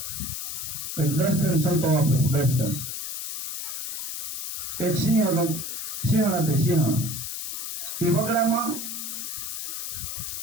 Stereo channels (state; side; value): noise; left; hiss, 5 dB below the sound